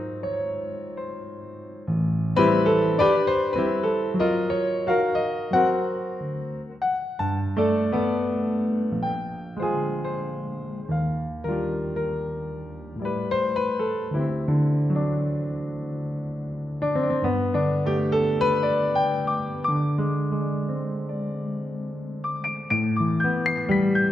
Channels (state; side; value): normal; both; correlation 0.88